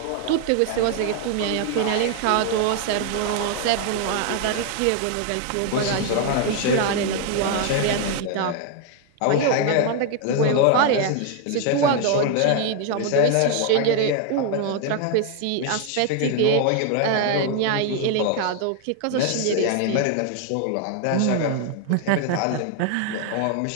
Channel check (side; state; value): both; different; correlation 0.01